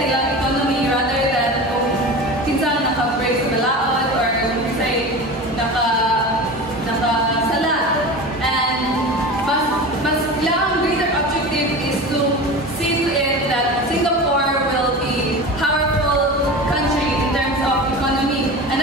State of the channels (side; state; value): both; normal; correlation 0.31